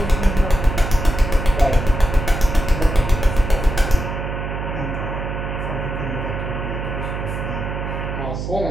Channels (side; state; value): right; noise; hum, 5 dB below the sound